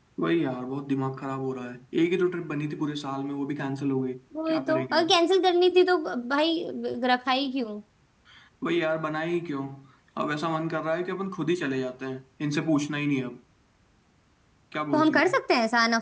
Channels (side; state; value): both; identical; correlation 1.00